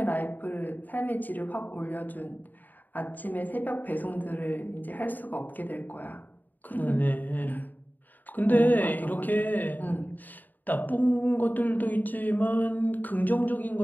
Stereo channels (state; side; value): late; right; 0.086 ms